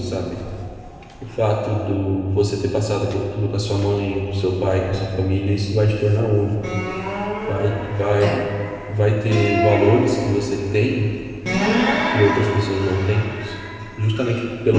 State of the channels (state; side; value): identical; both; correlation 1.00